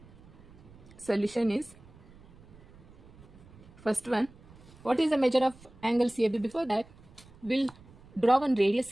Solution is, first one, what is the measure of angle CAB? Before that, we'll draw one radius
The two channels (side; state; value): right; noise; rumble, 23 dB below the sound